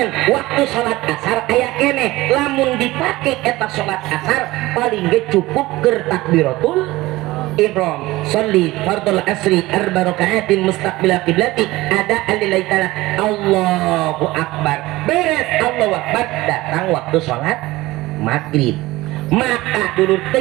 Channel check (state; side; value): quieter; left; 18.9 dB